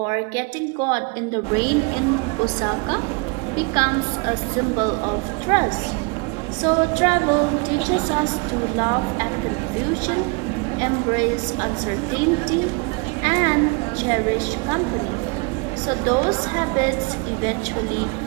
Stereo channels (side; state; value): left; quieter; 30.4 dB